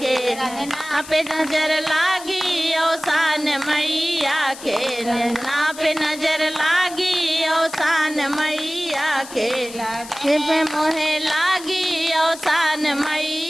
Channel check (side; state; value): left; noise; hiss, 15 dB below the sound